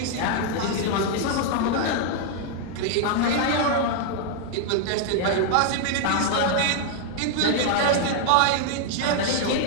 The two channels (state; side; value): different; both; correlation 0.00